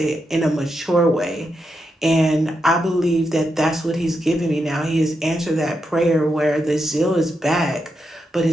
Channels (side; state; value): both; normal; correlation 0.85